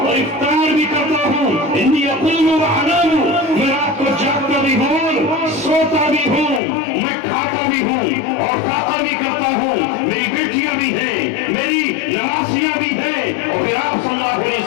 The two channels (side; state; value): right; drops out; at 6.6 s